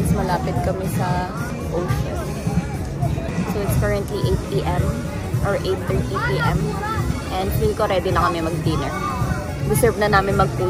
malapit kami sa ocean. So it's currently 8 p.m. or 8:30 p.m. And feel ko ready na kami mag-dinner. Deserve na namin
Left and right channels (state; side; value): identical; both; correlation 1.00